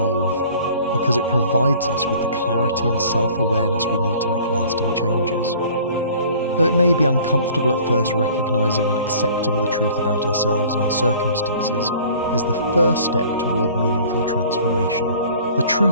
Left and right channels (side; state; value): both; inverted; correlation -0.50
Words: because it provides us with the clarity and self-awareness we need to make lasting changes. Though it may be uncomfortable at first, recognizing and accepting the truth about ourselves and our circumstances is the first step toward meaningful transformation. The